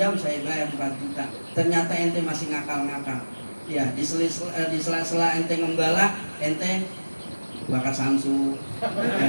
saya bayar 4 juta. Ternyata ente masih ngakal-ngakal. Ya, di sela-sela ente ngembala, ente bakar samsu.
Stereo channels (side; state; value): both; inverted; correlation -1.00